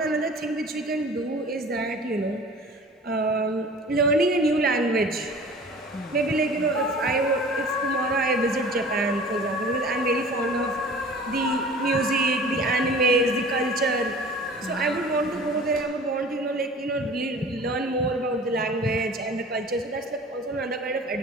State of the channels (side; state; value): both; normal; correlation 0.44